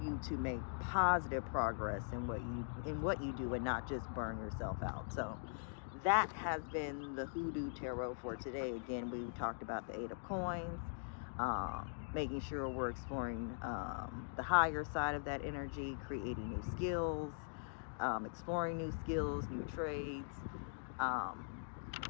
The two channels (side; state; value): right; silent; digital silence